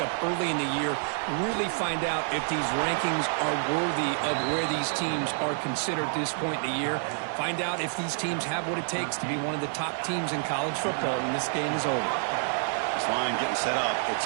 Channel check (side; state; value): left; silent; 59 dB below the other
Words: early in the year. Really find out if these rankings are worthy of where these teams are considered at this point in the year. Find out if these teams have what it takes to be one of the top teams in college football when this game is over. This line getting set up.